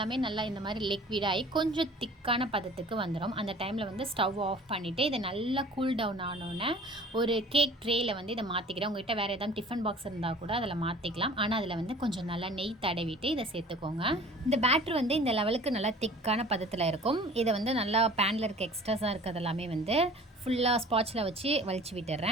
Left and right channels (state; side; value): normal; both; correlation 0.46